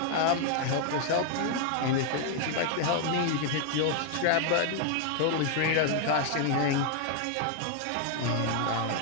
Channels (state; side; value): different; both; correlation 0.00